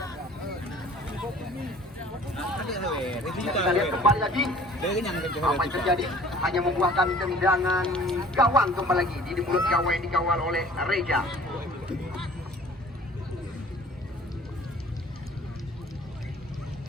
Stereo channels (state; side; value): normal; both; correlation 0.49